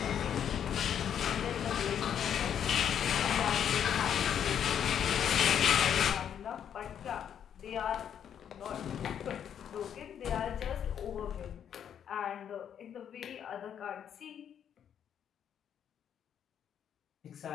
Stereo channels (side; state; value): right; quieter; 8.9 dB